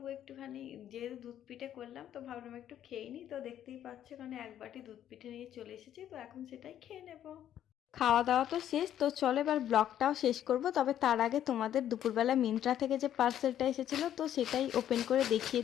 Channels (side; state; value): right; quieter; 10.8 dB